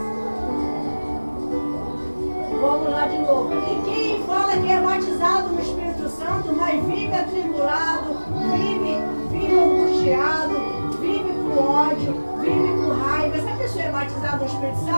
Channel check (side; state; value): both; inverted; correlation -1.00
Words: Vamos lá de novo. E quem fala que é batizado no Espírito Santo, mas vive atribulado, vive angustiado, vive com ódio, vive com raiva. Essa pessoa é batizada no Espírito